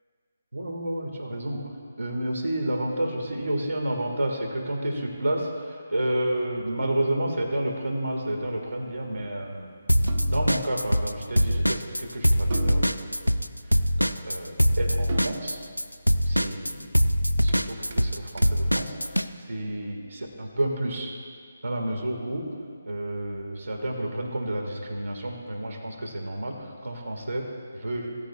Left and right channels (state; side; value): inverted; both; correlation -0.95